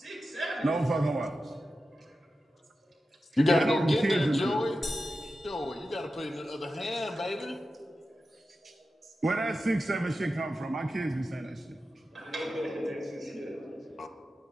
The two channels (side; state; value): both; normal; correlation 0.92